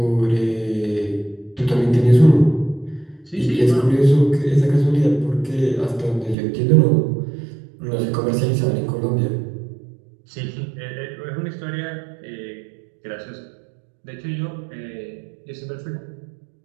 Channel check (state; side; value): drops out; left; at 6.4 s